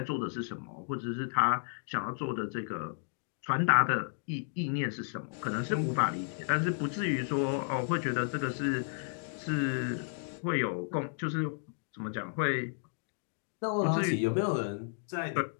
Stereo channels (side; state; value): right; silent; digital silence